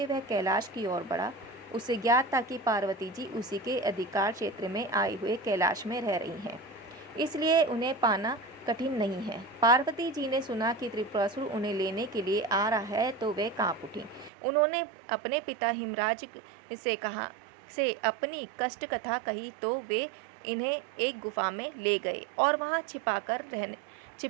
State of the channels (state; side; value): drops out; left; at 14.3 s